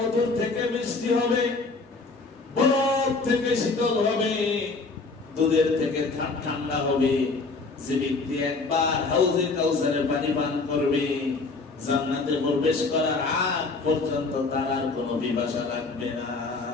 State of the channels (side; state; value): right; quieter; 3.9 dB